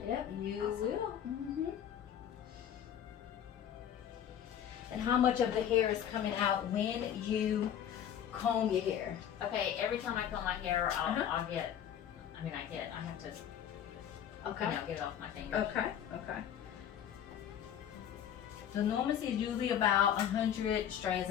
Yep, you Awesome. will. And how much of the hair is coming out when you comb your hair? Okay, every time I comb my hair, I'll get, I have to, Okay. get it off my fingers. Okay. The normal is usually about 100 strands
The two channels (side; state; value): right; quieter; 9.6 dB